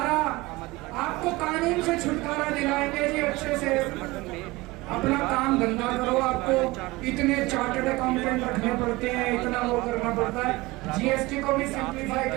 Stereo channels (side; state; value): left; quieter; 21.4 dB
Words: आपको कानून से छुटकारा दिलाएंगे जी। अच्छे से अपना काम धंधा करो। आपको इतने चार्टर्ड अकाउंटेंट रखने पड़ते हैं, इतना वो करना पड़ता है। GST को भी सिंप्लीफाई